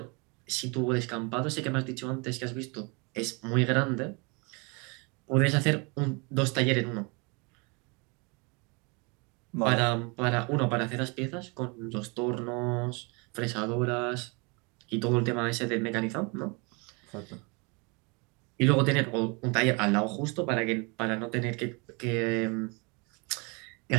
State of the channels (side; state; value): left; quieter; 30.8 dB